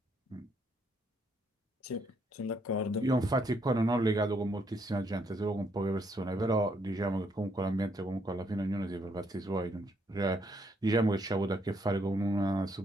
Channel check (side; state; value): both; normal; correlation 0.73